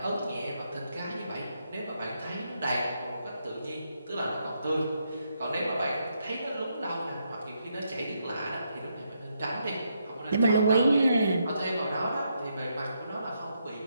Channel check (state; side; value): inverted; both; correlation -0.79